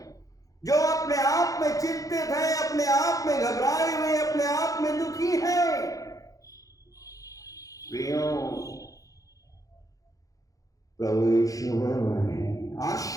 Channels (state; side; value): late; right; 0.17 ms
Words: जो अपने आप में चिंतित हैं, अपने आप में घबराए हुए, अपने आप में दुखी हैं। प्रियों, प्रभु यीशु हमें